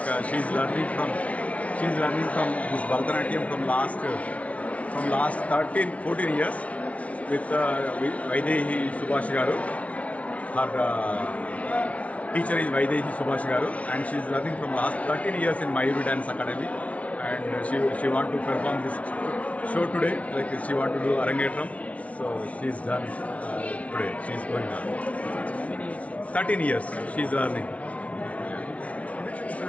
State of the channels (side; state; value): right; late; 0.065 ms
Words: she's learning from this Bharatanatyam from last 13-14 years with Vaidehi Subhash Garu. Her teacher is Vaidehi Subhash Garu, and she is learning from last 13 years in Mayuru Dance Academy, and she want to perform this show today. Like she want to do Arangetram, so she's done today. She's going on 13 years. She's learning.